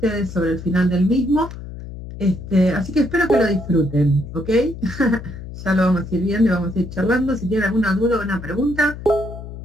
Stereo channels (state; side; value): noise; left; hum, 11 dB below the sound